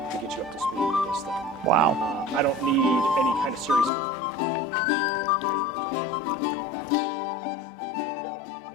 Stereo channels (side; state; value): right; drops out; at 3.9 s